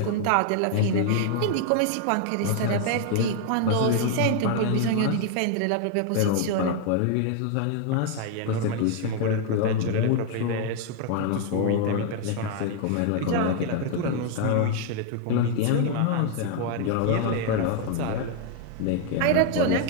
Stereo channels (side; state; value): both; different; correlation 0.00